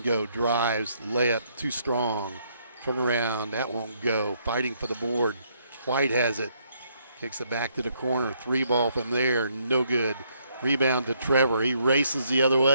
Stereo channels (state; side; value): inverted; both; correlation -0.71